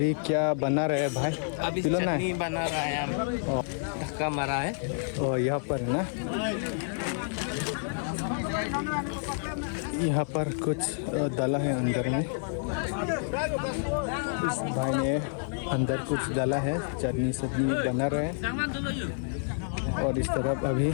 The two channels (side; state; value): right; silent; 59 dB below the other